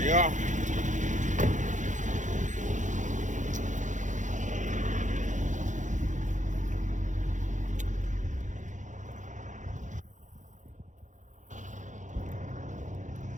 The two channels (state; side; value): late; left; 0.36 ms